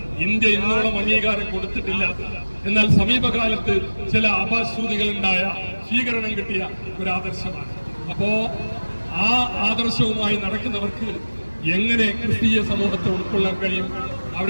ഇന്ത്യ ഇന്നോളം അംഗീകാരം കൊടുത്തിട്ടില്ല. എന്നാൽ സമീപകാലത്ത് ചില അപശ്രുതികളുണ്ടായ സ്വീകരണം കിട്ടിയ ഒരു ആദർശമാണ്. അപ്പോ ആ ആദർശവുമായി നടക്കുന്നവർക്ക് എങ്ങനെ ക്രിസ്തീയ സമൂഹത്തെ ഉൾക്കൊള്ളാൻ കഴിയും?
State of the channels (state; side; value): inverted; both; correlation -1.00